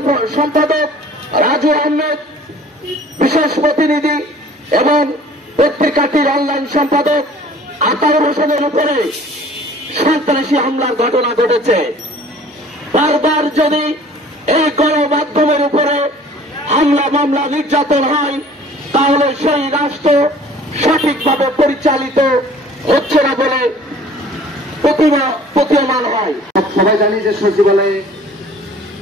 সম্পাদক রাজু আহমেদ, বিশেষ প্রতিনিধি এবং পত্রিকাটির অনলাইন সম্পাদক আতাউর হোসেনের উপরে সন্ত্রাসী হামলার ঘটনা ঘটেছে। বারবার যদি এই গণমাধ্যমের উপরে হামলা মামলা নির্যাতন হয় তাহলে সেই রাষ্ট্র সঠিকভাবে পরিচালিত হচ্ছে না বলে প্রতীয়মান হয়। সবাই জানি যে সচিবালয়ে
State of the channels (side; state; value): both; normal; correlation 0.50